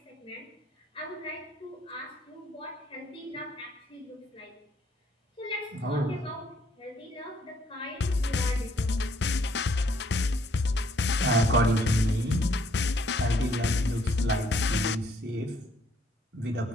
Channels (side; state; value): both; normal; correlation 0.67